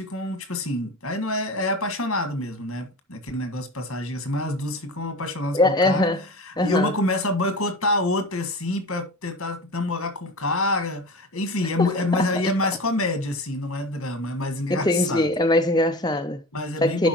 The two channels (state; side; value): normal; both; correlation 0.33